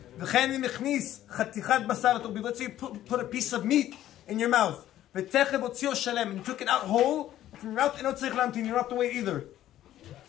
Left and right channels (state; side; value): quieter; right; 12.8 dB